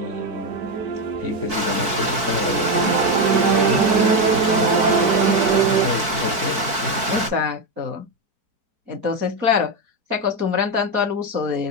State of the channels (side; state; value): left; late; 4.6 ms